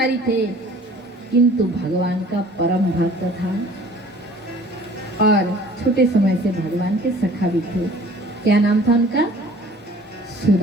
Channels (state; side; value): normal; both; correlation 0.50